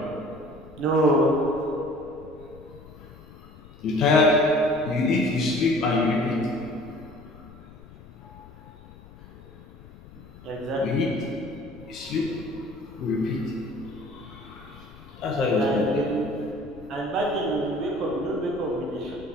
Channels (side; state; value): left; noise; rumble, 19 dB below the sound